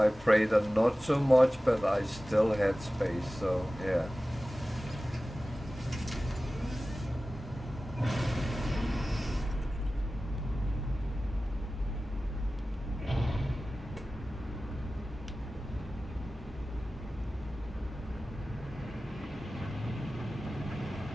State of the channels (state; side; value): normal; both; correlation 0.96